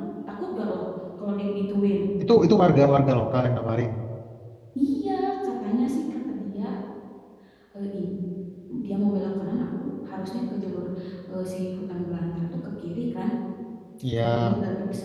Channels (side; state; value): both; identical; correlation 1.00